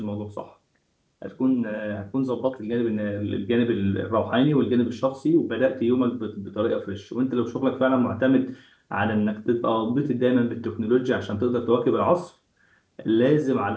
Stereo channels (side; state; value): both; identical; correlation 1.00